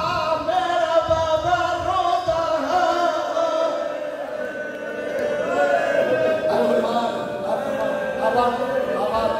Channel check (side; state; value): both; identical; correlation 1.00